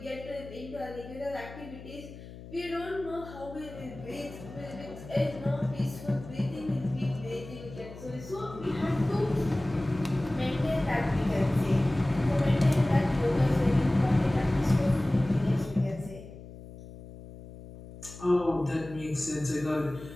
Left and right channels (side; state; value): left; noise; hum, 15 dB below the sound